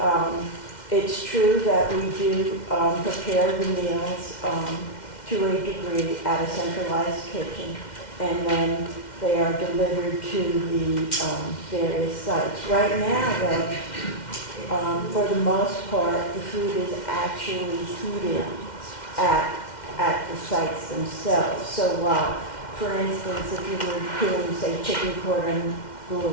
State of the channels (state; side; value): late; right; 2.1 ms